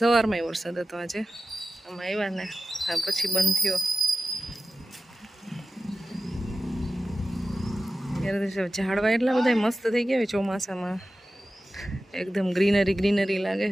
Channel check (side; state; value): both; normal; correlation 0.94